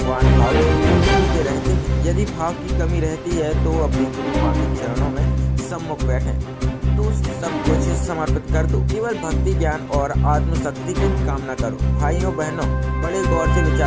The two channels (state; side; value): identical; both; correlation 1.00